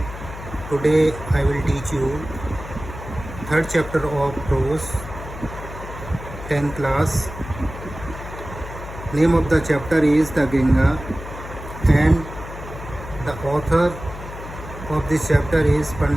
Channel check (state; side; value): noise; left; hum, 12 dB below the sound